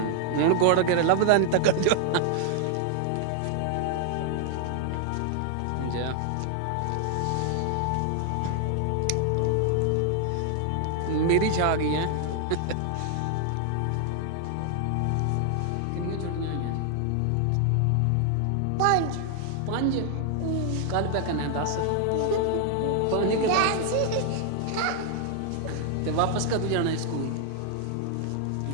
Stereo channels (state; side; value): different; both; correlation 0.00